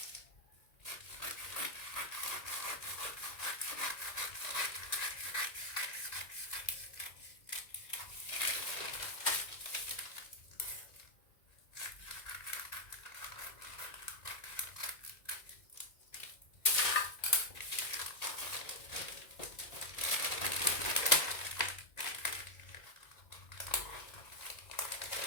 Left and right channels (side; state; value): right; late; 1.9 ms